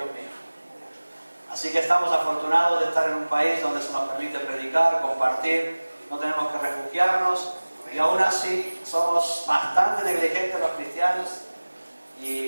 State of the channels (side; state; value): both; inverted; correlation -1.00